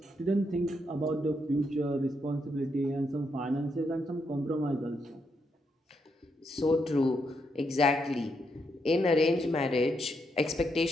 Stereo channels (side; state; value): both; normal; correlation 0.79